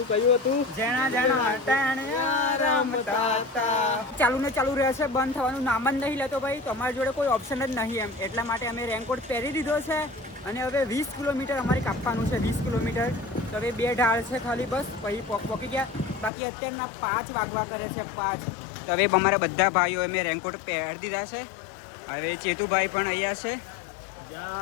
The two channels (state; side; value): drops out; right; at 16.3 s